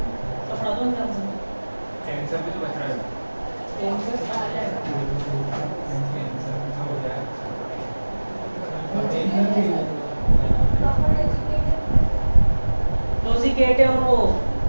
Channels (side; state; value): both; inverted; correlation -1.00